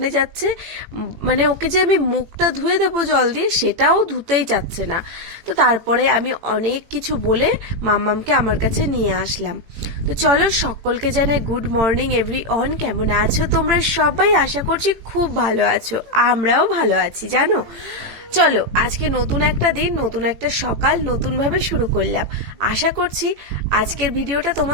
যাচ্ছে। মানে ওকে যে আমি মুখটা ধুয়ে দেবো জল দিয়ে, সেটাও ধুতেই চাচ্ছে না। তো তারপরে আমি অনেক কিছু বলে মাম্মামকে আমার কাছে নিয়ে আসলাম। তো চলো, সকলকে জানাই গুড মর্নিং এভরিওয়ান। কেমন আছো তোমরা সবাই? আশা করছি খুব ভালো আছো, আমরাও ভালো আছি জানো। চলো, আজকে নতুন একটা দিন, নতুন একটা সকাল, নতুন ভাবে শুরু করলাম। আশা করছি আজকের ভিডিওটা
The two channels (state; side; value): late; left; 18 ms